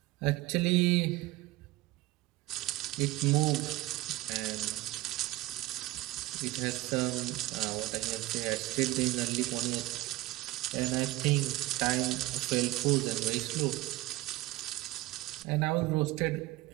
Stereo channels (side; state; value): left; quieter; 19.0 dB